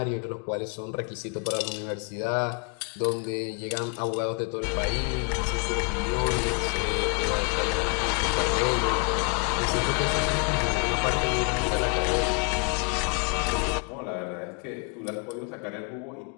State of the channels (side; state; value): right; quieter; 37.1 dB